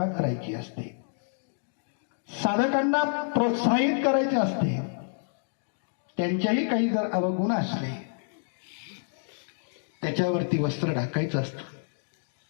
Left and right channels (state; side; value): silent; right; digital silence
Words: करायची असते, साधकांना प्रोत्साहित करायचे असते. त्यांच्याही काही जर अवगुण असले त्याच्यावरती वस्त्र ढाकायचं असतं,